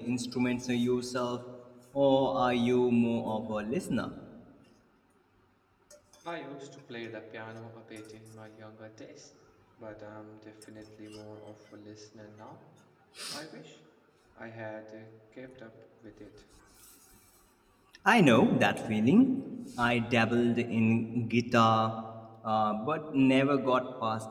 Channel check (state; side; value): identical; both; correlation 1.00